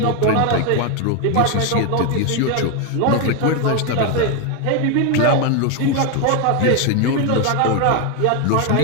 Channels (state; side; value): different; both; correlation 0.01